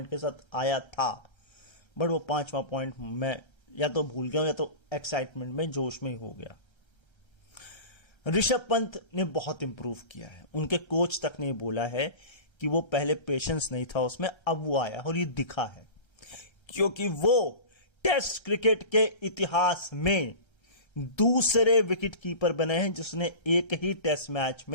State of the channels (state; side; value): late; right; 1.3 ms